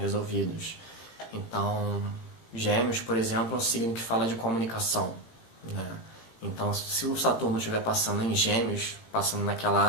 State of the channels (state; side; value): late; right; 18 ms